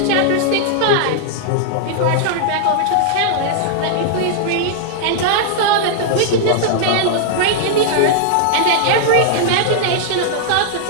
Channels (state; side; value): different; both; correlation -0.01